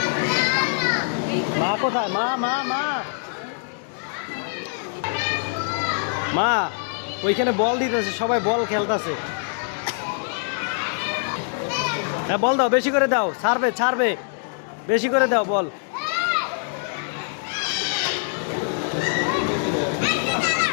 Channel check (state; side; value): silent; right; 63 dB below the other